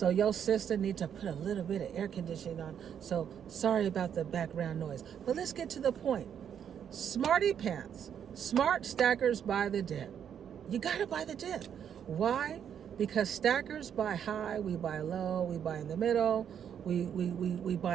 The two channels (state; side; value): quieter; left; 8.6 dB